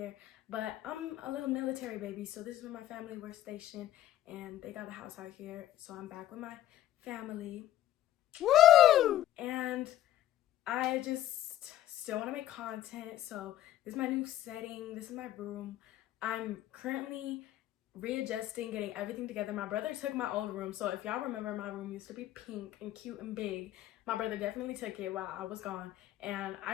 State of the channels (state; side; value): quieter; right; 13.1 dB